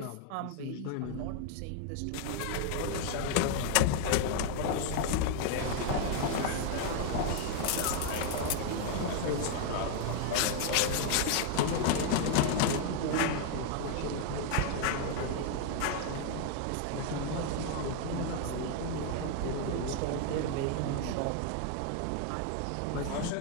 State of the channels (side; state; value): both; different; correlation 0.00